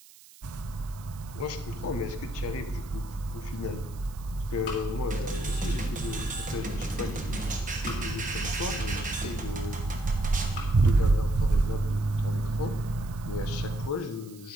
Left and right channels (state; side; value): noise; right; hiss, 22 dB below the sound